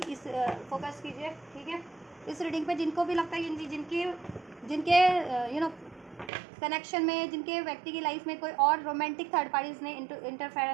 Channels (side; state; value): left; drops out; at 6.3 s